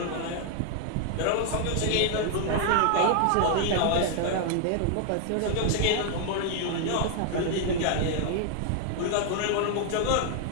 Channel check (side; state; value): both; different; correlation 0.00